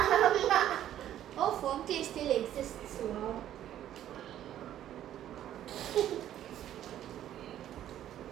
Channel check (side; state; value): left; quieter; 11.7 dB